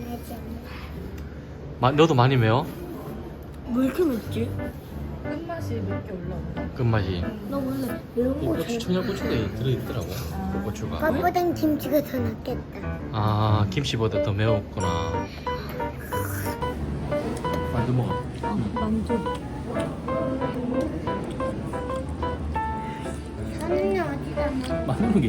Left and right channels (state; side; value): identical; both; correlation 1.00